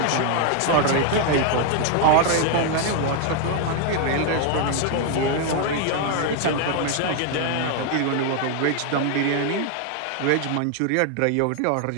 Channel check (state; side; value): different; both; correlation 0.00